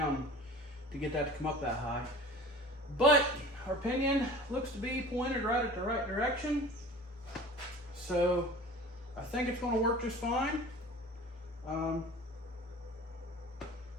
to get that to come up that high. But our pinion looks to be pointed right at the right direction. So I think it's going to work just fine. Time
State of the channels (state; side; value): normal; both; correlation 0.42